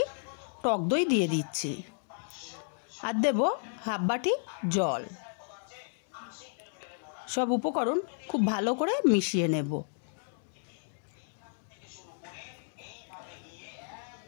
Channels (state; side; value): silent; right; digital silence